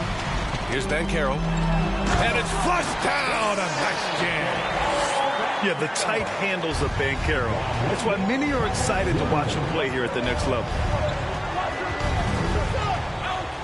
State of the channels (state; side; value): identical; both; correlation 1.00